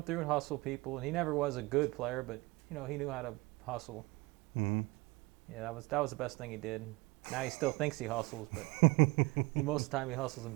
through and hustle people, and he never was a good player, but you know, he knew how to hustle. Mm-hmm. Yeah, that was the best thing he did. Now he still thinks he hustles, but most of the time he hustles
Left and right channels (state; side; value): quieter; left; 23.5 dB